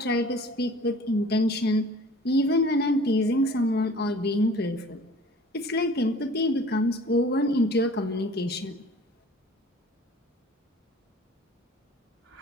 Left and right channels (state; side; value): normal; both; correlation 0.47